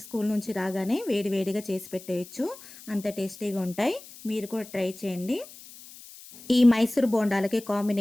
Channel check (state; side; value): noise; left; hiss, 18 dB below the sound